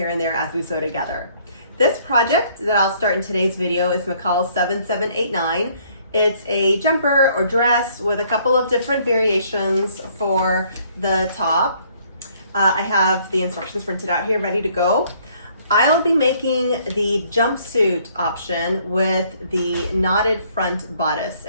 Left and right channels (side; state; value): both; inverted; correlation -0.63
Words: and there as we sew together. This project that I'll start in today's video is McCalls 7789. It's a jumper or dress with a couple of different variations for the top. I have the instructions printed out here ready to go. I'll be making the jumpsuit option with the knotted front bodice.